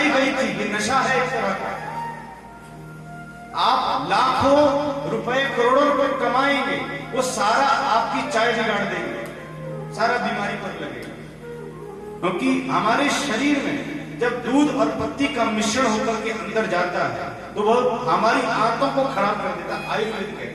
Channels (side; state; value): both; identical; correlation 1.00